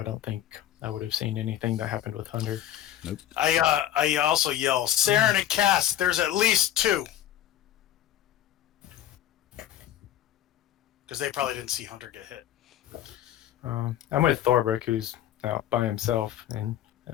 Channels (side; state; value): right; quieter; 12.1 dB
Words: don't think I would have seen anything that happened with Hunter. Nope. I also yell, Saren and Cass, there's at least 2. Because they probably didn't see Hunter get hit. I'm with Thorbrick, who's out by himself, and